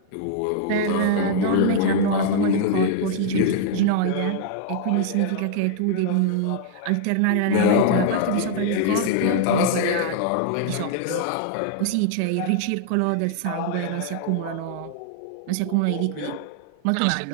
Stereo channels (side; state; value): both; different; correlation -0.01